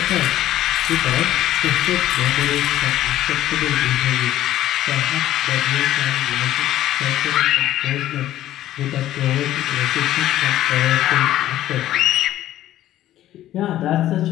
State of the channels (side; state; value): right; quieter; 13.4 dB